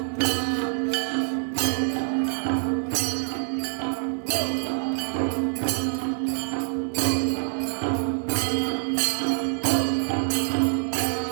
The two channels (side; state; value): left; silent; digital silence